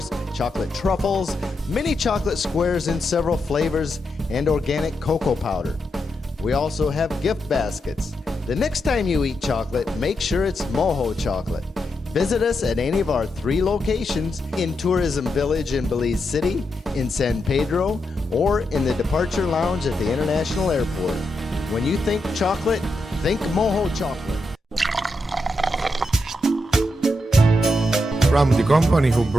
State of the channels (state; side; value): normal; both; correlation 0.84